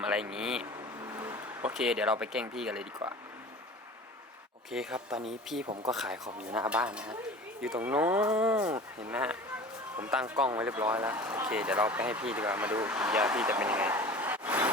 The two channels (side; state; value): both; normal; correlation 0.39